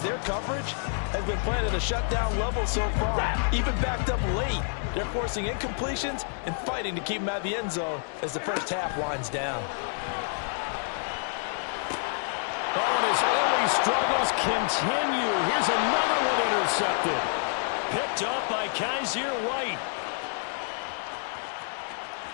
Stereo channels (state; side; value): silent; right; 59 dB below the other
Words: their coverage has been playing at a shutdown level so far. Even backed up late, they're forcing incompletions and fighting to keep them out of the end zone as the first half winds down. Oh, and his early struggles continue. Here's another one intercepted. Picked up by Kaiser White.